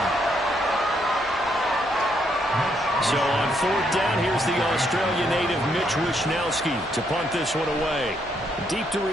So on fourth down, here's the Australia native Mitch Wishnowsky to punt this one away. Deep to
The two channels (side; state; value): both; normal; correlation 0.74